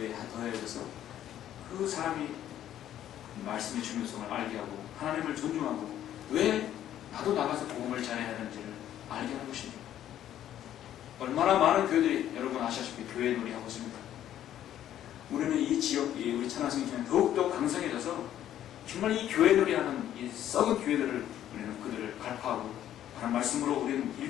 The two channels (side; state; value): right; quieter; 11.5 dB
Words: 더해져서 그 사람이 말씀의 중요성을 알게 하고 하나님을 존중하고 왜 나도 나가서 복음을 전해야 하는지를 알게 하는 것입니다. 얼마나 많은 교회들이 여러분 아시다시피 교회 놀이하고 있습니다. 우리는 이 지역, 우리 찬양성교회는 더욱더 강성해져서 정말 이 교회 놀이하는 이 썩은 교회들을 우리는 그들을 갈파하고 하는 말씀으로 우리는